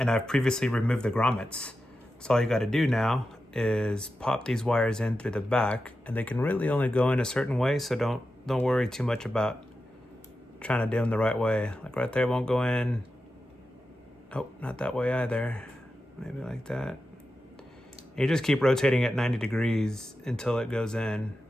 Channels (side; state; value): both; normal; correlation 0.91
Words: I've previously removed the grommets. So all you gotta do now is pop these wires in through the back, and they can really only go in a certain way, so don't worry too much about trying to do them the right way. Like right there won't go in. Oh, not that way either. Maybe like that. You just keep rotating at 90 degrees until it goes in.